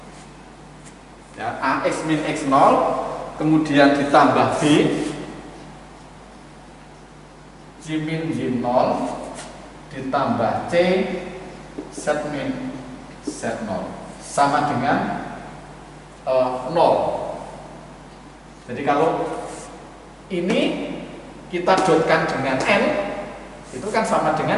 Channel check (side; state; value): both; identical; correlation 1.00